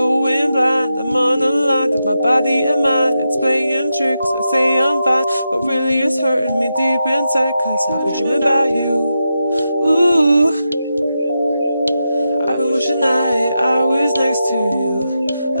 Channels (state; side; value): inverted; both; correlation -0.88